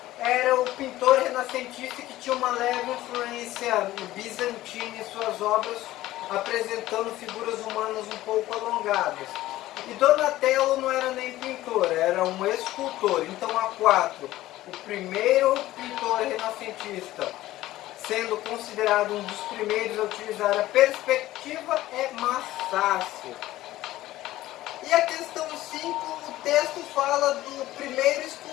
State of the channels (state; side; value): quieter; right; 15.7 dB